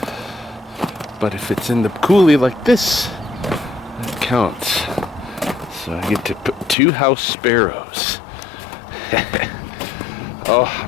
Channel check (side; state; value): right; drops out; at 6.8 s